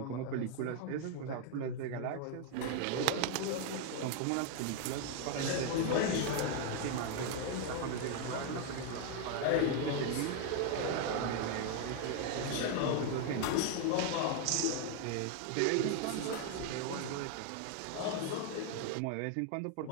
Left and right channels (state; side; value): different; both; correlation 0.00